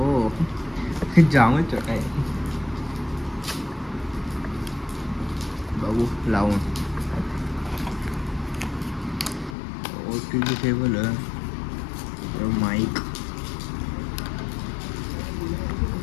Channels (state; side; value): drops out; right; at 9.6 s